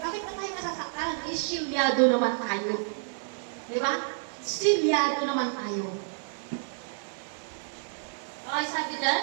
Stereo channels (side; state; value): left; silent; 58 dB below the other